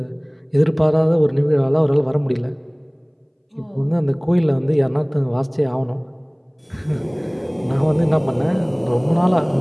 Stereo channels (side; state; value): both; identical; correlation 1.00